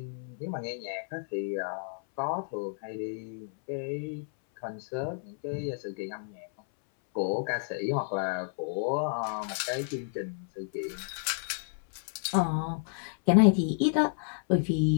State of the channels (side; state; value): right; silent; 57 dB below the other